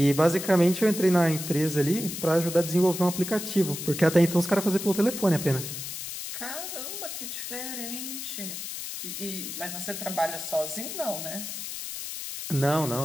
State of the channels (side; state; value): left; noise; hiss, 7 dB below the sound